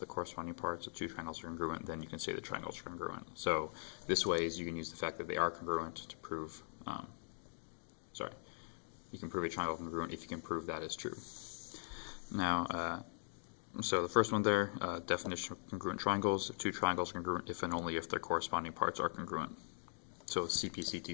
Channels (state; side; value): silent; right; digital silence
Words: the corresponding parts of 2 triangles are congruent, then you can say the triangles are congruent. So this way is you can use the fact that they are congruent to prove, you can prove a triangle congruent if you can prove that is true. Now, so the first one there, definition of congruent triangles: 2 triangles are congruent if and only if their corresponding parts are congruent. So